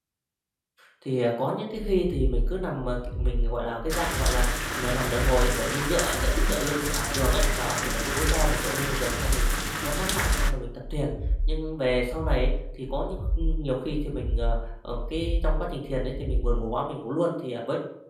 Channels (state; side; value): identical; both; correlation 1.00